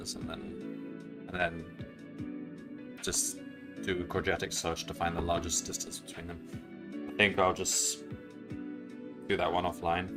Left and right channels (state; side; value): identical; both; correlation 1.00